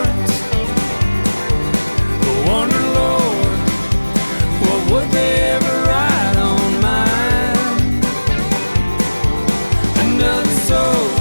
I wonder, Lord, what would they ever write on mine? Another soul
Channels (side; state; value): both; inverted; correlation -1.00